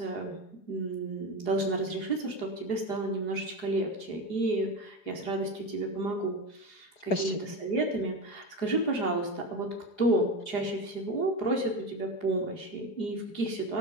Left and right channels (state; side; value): late; right; 4.8 ms